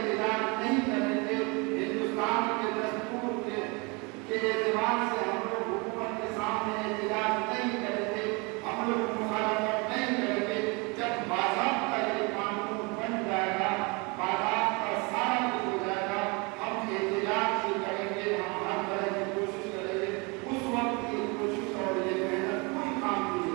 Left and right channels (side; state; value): left; quieter; 29.1 dB